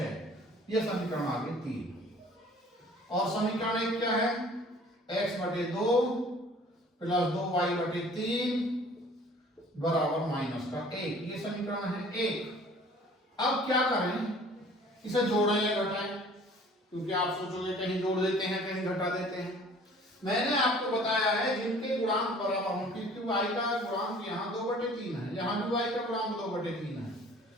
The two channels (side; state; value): both; normal; correlation 0.51